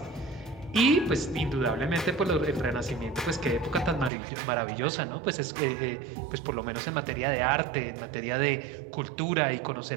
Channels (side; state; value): left; drops out; at 4.1 s